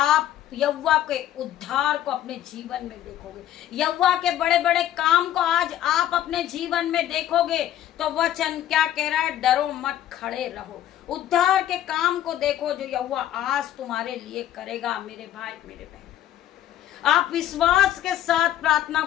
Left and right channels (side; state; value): right; quieter; 12.0 dB